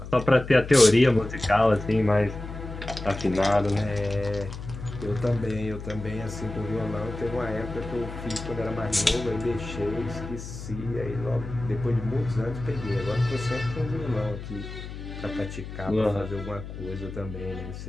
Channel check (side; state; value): left; noise; hum, 10 dB below the sound